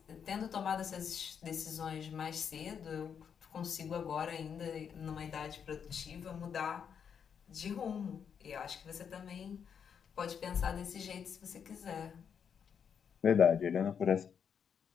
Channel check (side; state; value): right; quieter; 7.4 dB